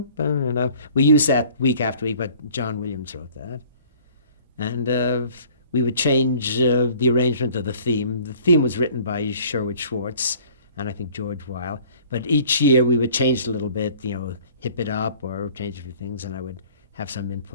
we use that week after week, but John Williams wrote that. And we would change the arrangement of the theme. The theme was written by Sherwood Schwartz and I think George Weil. But each year we would change it a little bit, hip it up or change a few things, and I would have some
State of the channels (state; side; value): inverted; both; correlation -0.52